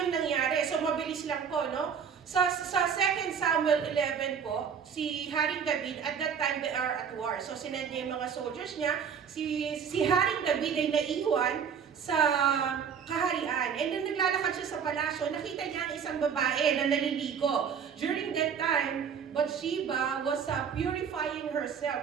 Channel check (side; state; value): left; quieter; 7.1 dB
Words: nangyari. So, mabilis lang po, no? Sa 2 Samuel 11 po, si Haring David, at that time they are at war. So sinend niya yung mga soldiers niya. Si Haring David ay naiwan sa kaharian. And then naglalakad siya sa palasyo, nakita niya ang isang babae na naliligo. During that time, Bathsheba was purifying